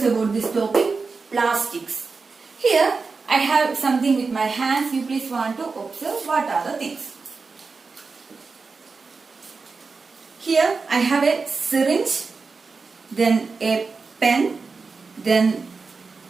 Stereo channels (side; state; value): left; quieter; 4.5 dB